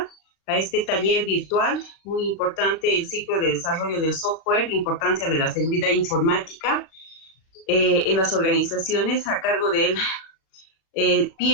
a este taller virtual. Muy importante el ciclo de desarrollo del software, la importancia de la seguridad informática en las organizaciones, a cargo del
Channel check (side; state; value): right; late; 36 ms